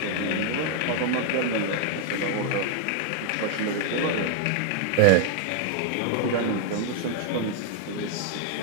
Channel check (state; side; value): different; both; correlation 0.00